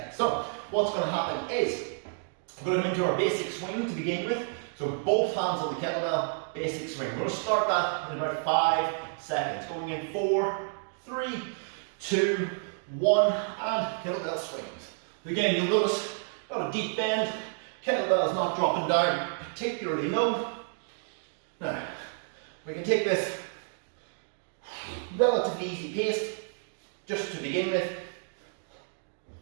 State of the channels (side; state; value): left; silent; 58 dB below the other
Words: So what's going to happen is we're going to go into our basic swing to begin with. So both hands on the kettlebell, basic swing. We're going to start that in about 5 seconds. Going in 4, 3, 2, 1, and kettlebell swings. Again, you'll notice got a deep bend. Kettlebell is not dropping down particularly low. Now, we can take this relatively easy pace just to begin with.